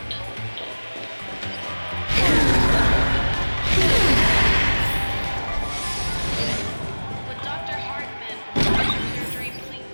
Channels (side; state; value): both; inverted; correlation -1.00